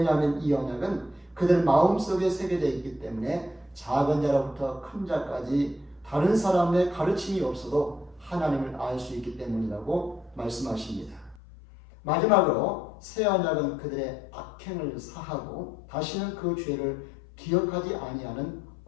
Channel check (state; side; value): drops out; right; at 11.4 s